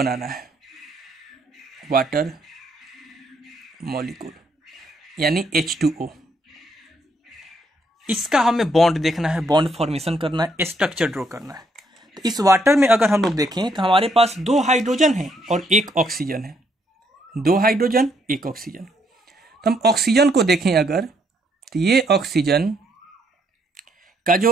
है, वाटर मॉलिक्यूल यानी H2O। इसका हमें बॉन्ड देखना है, बॉन्ड फॉर्मेशन करना है, स्ट्रक्चर ड्रॉ करना है। तो इस वाटर में अगर हम लोग देखें तो हमारे पास 2 हाइड्रोजन है और 1 ऑक्सीजन है, 2 हाइड्रोजन 1 ऑक्सीजन। तो हम ऑक्सीजन को देखें अगर, तो ये ऑक्सीजन का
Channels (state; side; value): normal; both; correlation 0.72